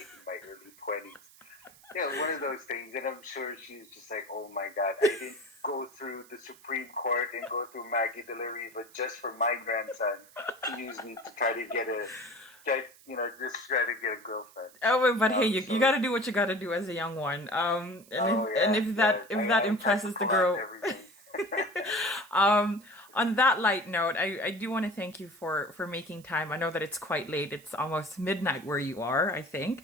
in my early 20s. Yeah, one of those things. And I'm sure she's just like, oh my God, I didn't go through the Supreme Court and go through Maggie de la Riva just for my grandson to use me to try to get just try to get a girlfriend. Oh, but hey, you got to do what you got to do as a young one. And if that impresses the girl. On that light note, I do want to thank you for making time. I know that it's quite late. It's almost midnight where you are, I think.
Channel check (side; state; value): right; noise; hiss, 24 dB below the sound